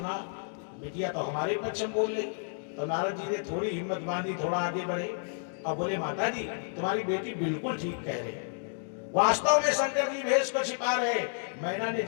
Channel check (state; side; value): silent; right; digital silence